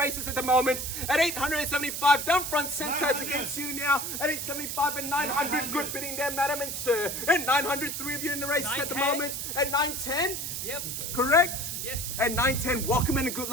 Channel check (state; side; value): noise; right; hiss, 4 dB below the sound